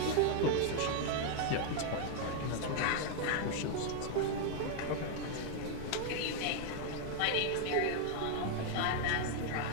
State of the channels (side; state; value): both; different; correlation 0.00